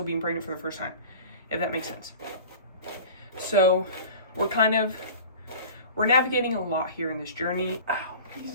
being pregnant for the first time, if that makes sense. So we're navigating a lot here in this journey. Ow,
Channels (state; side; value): inverted; both; correlation -0.39